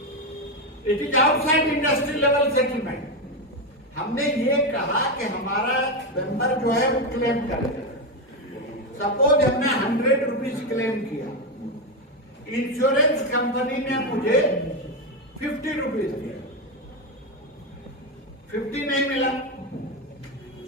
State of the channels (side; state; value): both; normal; correlation 0.10